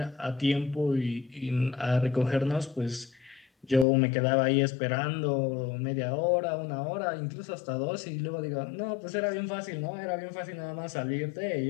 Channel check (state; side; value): drops out; right; at 3.9 s